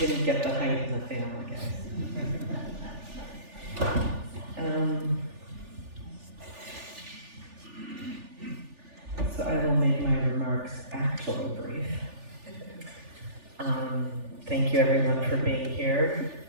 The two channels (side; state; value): left; late; 3.4 ms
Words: get the height in the family, guys. So I will make my remarks actually brief. Thank you everyone for being here.